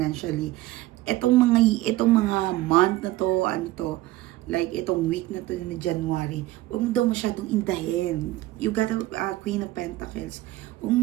itong mga month na to, like itong week na to na January, huwag mo daw masyadong indahin. You got a Queen of Pentacles. Huwag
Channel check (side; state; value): left; quieter; 16.7 dB